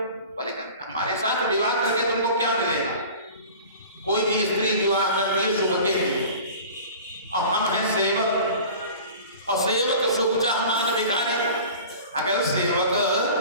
बोले हमारे साथ विवाह करके तुमको क्या मिलेगा? कोई भी स्त्री विवाह करती है सुख के लिए, और हम हैं सेवक, और सेवक सुख चाह मान भिखारी। अगर सेवक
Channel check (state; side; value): inverted; both; correlation -0.40